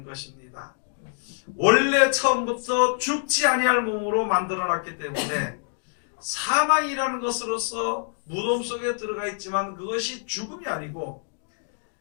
것입니다. 원래 처음부터 죽지 아니할 몸으로 만들어놨기 때문에 사망이라는 것으로서 무덤 속에 들어가 있지만 그것이 죽음이 아니고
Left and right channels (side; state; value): right; silent; 61 dB below the other